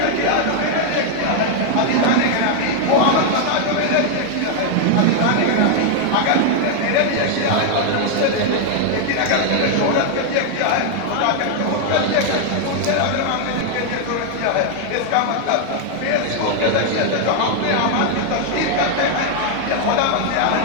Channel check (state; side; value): different; both; correlation 0.00